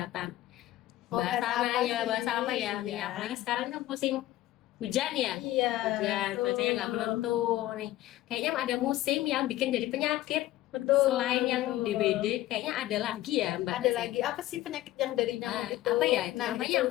Mau Bahas bahas sana apa ya, sih? bahas apa ya? Iya. Ya, apalagi sekarang kan musim hujan ya. Iya. Hujan, cuacanya nggak menentu nih. Kayaknya ada musim yang bikin jadi penyakit. Betul. Selain yang betul. DBD, kayaknya ada lagi ya, Mbak. Ada lagi apa sih penyakit yang dari nyamuk itu? Apa ya? Itu Nah, namanya itu.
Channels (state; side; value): quieter; right; 15.4 dB